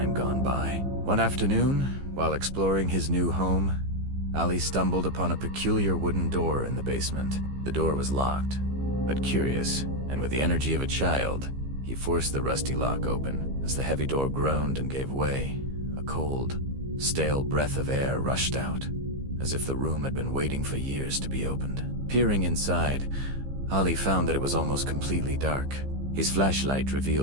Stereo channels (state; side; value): late; left; 15 ms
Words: gone by. One afternoon, while exploring his new home, Ali stumbled upon a peculiar wooden door in the basement. The door was locked, but curious, and with the energy of a child, he forced the rusty lock open. As the heavy door groaned and gave way, a cold, stale breath of air rushed out, as if the room had been waiting for years to be opened. Peering inside, Ali found that it was almost completely dark. His flashlight